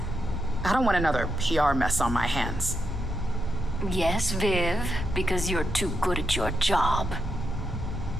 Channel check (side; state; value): both; normal; correlation 0.83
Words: I don't want another PR mess on my hands. Yes, Viv, because you're too good at your job.